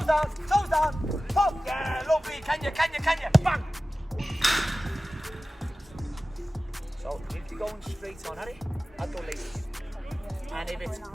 down. Pop. Yeah, lovely. Can you? Bang. So if you're going straight on, Harry, I'd go laces. And if it's,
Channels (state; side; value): normal; both; correlation 0.96